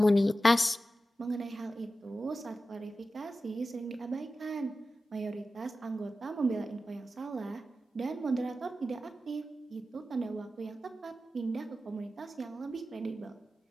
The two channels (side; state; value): both; normal; correlation 0.93